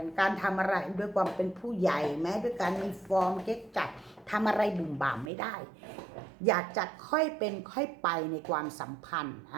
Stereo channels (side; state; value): left; drops out; at 5.3 s